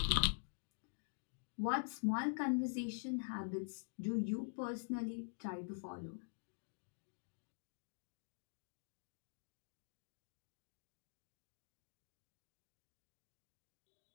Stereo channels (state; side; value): silent; right; digital silence